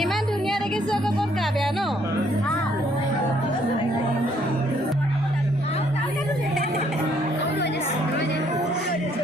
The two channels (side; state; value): both; normal; correlation 0.67